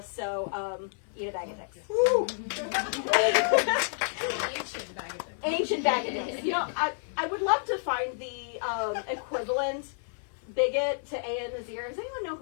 So eat a bag of dicks. Ancient bag of dicks. You know, I would love to find the equivalent bigot to A.N. Nazir. Does anyone know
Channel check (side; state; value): right; silent; digital silence